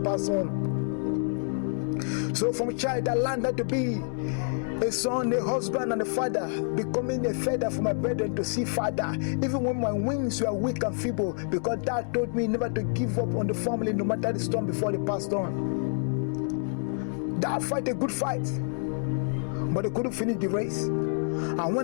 pass on. So from a child, I learned to be a son, a husband, and a father, becoming a feather for my brethren to see father, even when my wings were weak and feeble, because Dad told me never to give up on the family no matter the storm before they passed on. Dad fight a good fight, but they couldn't finish the race. And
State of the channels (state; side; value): silent; right; 59 dB below the other